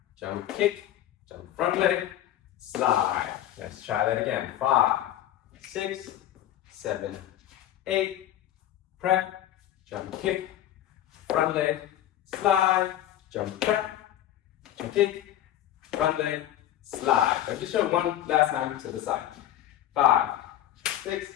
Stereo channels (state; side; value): quieter; right; 12.5 dB